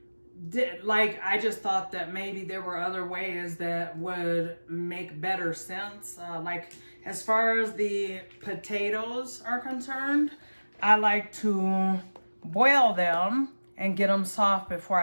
just thought that maybe there were other ways that would make better sense. Like as far as the potatoes are concerned, I like to boil them and get them soft before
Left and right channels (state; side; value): inverted; both; correlation -1.00